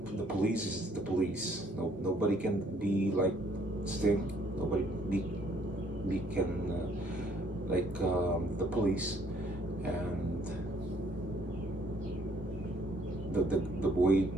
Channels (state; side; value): normal; both; correlation 0.64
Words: the police is the police. No, nobody can be like Sting. Nobody be can like the police, and the way,